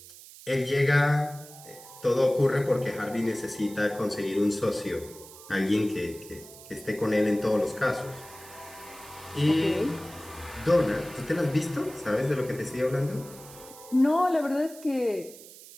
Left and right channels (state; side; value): noise; right; hiss, 18 dB below the sound